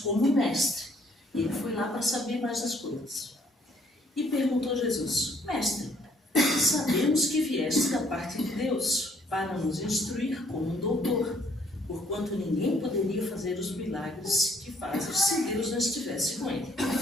como mestre. E ele foi lá para saber mais das coisas. E perguntou a Jesus, mestre, sabemos que vieste da parte de Deus para nos instruir como um doutor, porquanto ninguém poderia fazer os milagres que fazes se Deus não estivesse com ele.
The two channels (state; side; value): normal; both; correlation 0.65